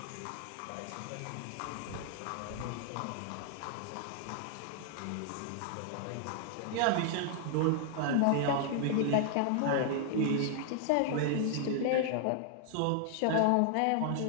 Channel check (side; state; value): both; different; correlation 0.00